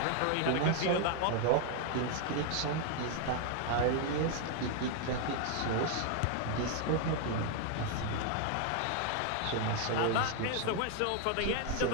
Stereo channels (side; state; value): both; different; correlation 0.00